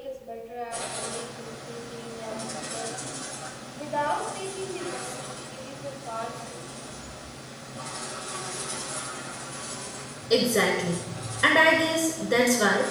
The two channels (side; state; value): both; identical; correlation 1.00